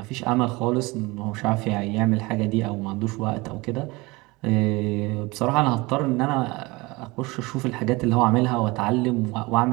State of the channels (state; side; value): quieter; left; 23.4 dB